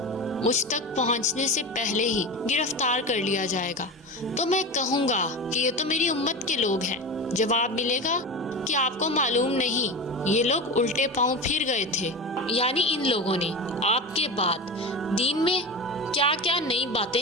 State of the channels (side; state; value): both; normal; correlation 0.26